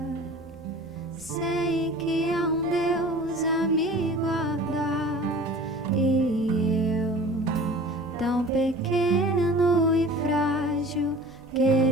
sei que há um Deus a me guardar, e eu, tão pequeno e frágil,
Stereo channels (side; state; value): both; normal; correlation 0.42